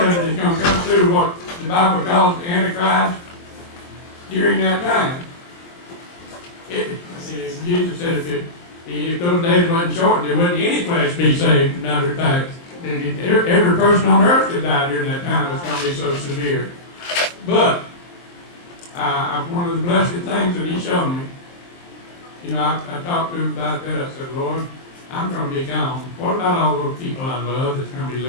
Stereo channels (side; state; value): right; late; 23 ms